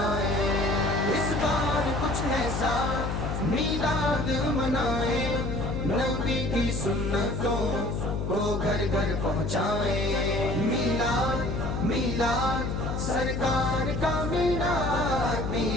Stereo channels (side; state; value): left; noise; hum, 2 dB below the sound